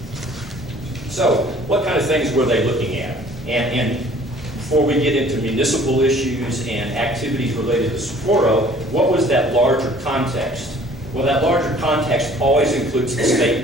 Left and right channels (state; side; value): normal; both; correlation 0.53